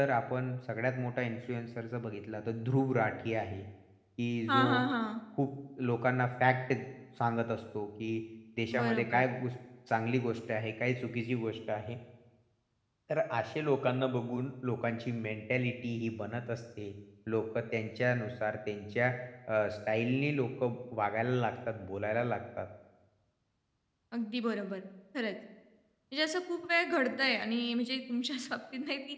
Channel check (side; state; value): both; identical; correlation 1.00